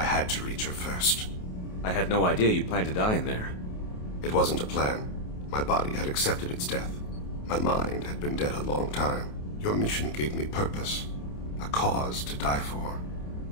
had to reach her first. I had no idea you'd plan to die in there. It wasn't a plan. My body had accepted its death. My mind had been dead a long time. Your mission gave me purpose, a cause to die for,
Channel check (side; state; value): right; late; 28 ms